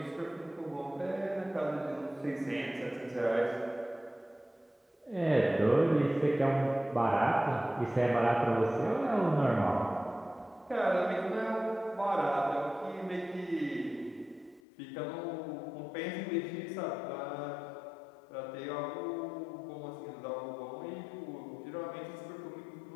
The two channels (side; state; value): right; drops out; at 14.6 s